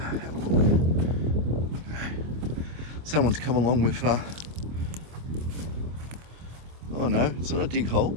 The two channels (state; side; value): late; left; 25 ms